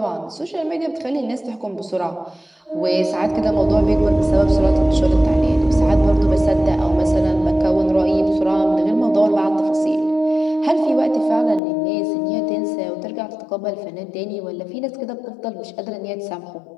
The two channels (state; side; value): drops out; right; at 11.6 s